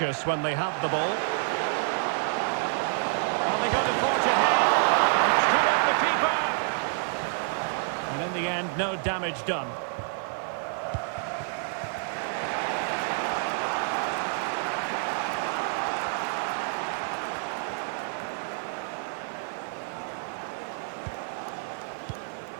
when they have the ball. Are they going to forge ahead? It's come off the keeper. And in the end, no damage done.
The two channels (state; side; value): silent; left; 56 dB below the other